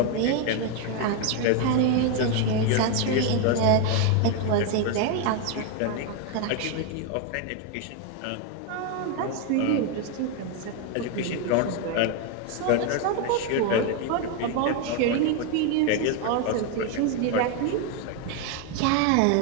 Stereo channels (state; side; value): different; both; correlation 0.01